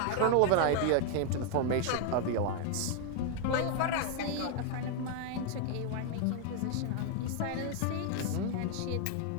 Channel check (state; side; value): different; both; correlation 0.00